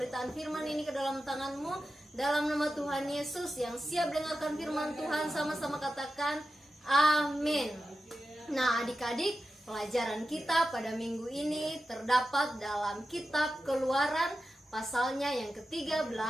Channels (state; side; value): normal; both; correlation 0.92